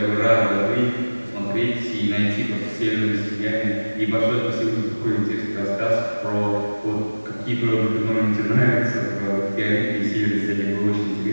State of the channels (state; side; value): inverted; both; correlation -1.00